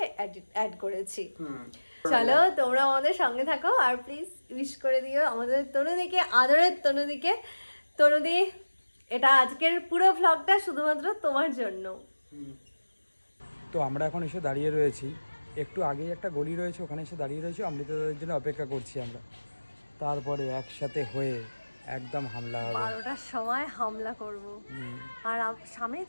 অ্যাড করেছি। চলো তোমরা আমাদের সঙ্গে থাকো, আর প্লিজ উইশ করে দিও আমাদের তনুদিকে, আদরের তনুদিকে। তনুদি, এটা আজকের পুরো ভ্লগটা শুধুমাত্র তোমার জন্য। তো আমরা এখন এসে দাঁড়িয়ে রয়েছি, একটু আগেই একটা গলি রয়েছে, ওখানে এসে দাঁড়িয়ে রয়েছি, অমৃতদের জন্য অপেক্ষা করছি আমরা। তারপরে একসাথে হয়ে একদম হামলা হবে। 12টার সময় হামলা করব। আর সামনেই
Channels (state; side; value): inverted; both; correlation -1.00